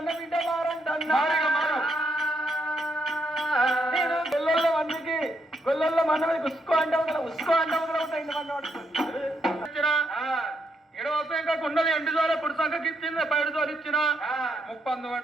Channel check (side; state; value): both; normal; correlation 0.78